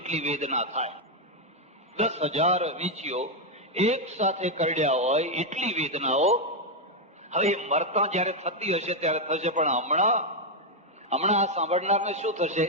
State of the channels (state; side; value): normal; both; correlation 0.01